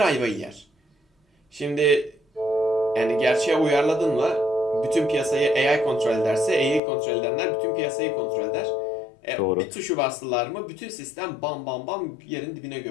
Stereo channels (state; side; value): drops out; right; at 6.8 s